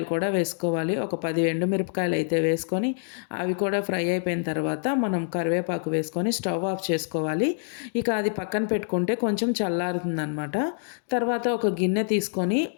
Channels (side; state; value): right; silent; digital silence